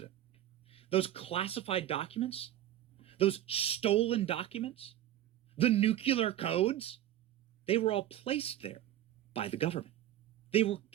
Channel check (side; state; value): left; quieter; 12.4 dB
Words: Those classified documents, those stolen documents, the nuclear codes, they were all placed there by the government. They were